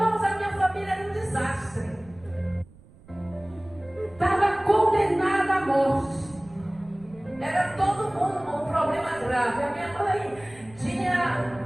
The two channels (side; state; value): right; noise; rumble, 23 dB below the sound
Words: a minha família era um desastre. Estava condenada à morte. Era todo mundo um problema grave. A minha mãe tinha